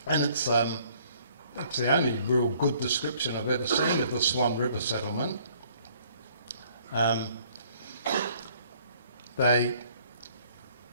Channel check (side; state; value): both; inverted; correlation -0.60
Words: And it's the only real good description I've ever seen of the Swan River settlement. When